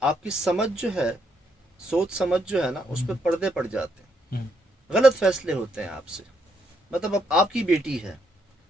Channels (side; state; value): both; normal; correlation 0.75